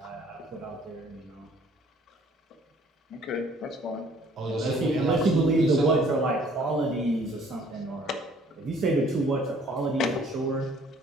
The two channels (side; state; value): both; normal; correlation 0.58